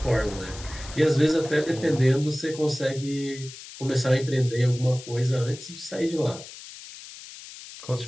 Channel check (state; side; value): noise; left; hiss, 15 dB below the sound